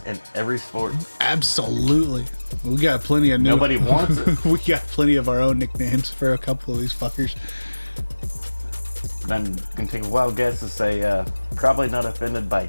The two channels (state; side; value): inverted; both; correlation -1.00